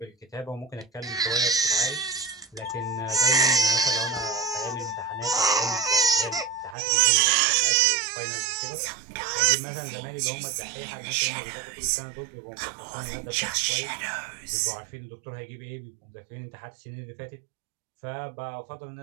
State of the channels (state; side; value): drops out; left; at 6.8 s